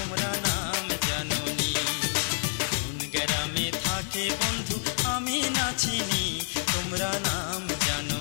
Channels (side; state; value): right; silent; 59 dB below the other